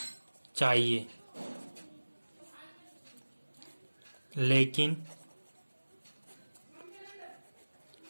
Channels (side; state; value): both; inverted; correlation -1.00